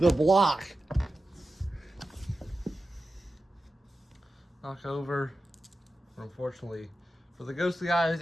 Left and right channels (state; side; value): normal; both; correlation 0.92